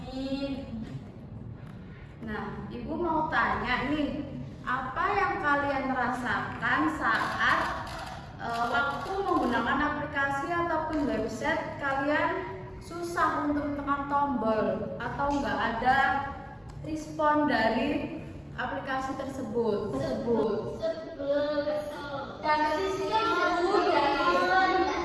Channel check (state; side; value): identical; both; correlation 1.00